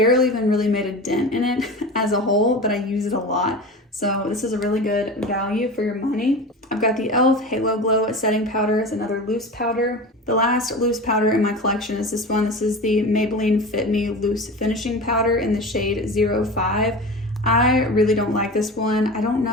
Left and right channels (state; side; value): normal; both; correlation 0.31